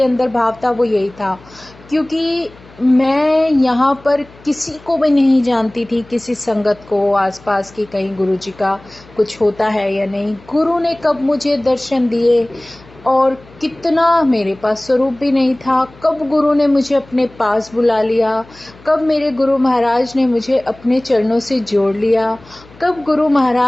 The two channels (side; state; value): left; noise; hum, 24 dB below the sound